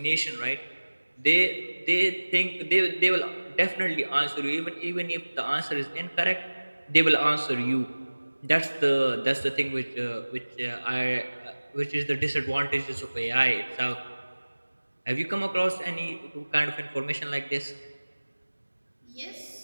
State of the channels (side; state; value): both; inverted; correlation -1.00